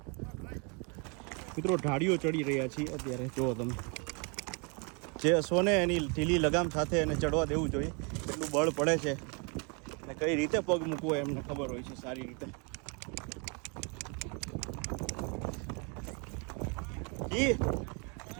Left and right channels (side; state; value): left; quieter; 34.2 dB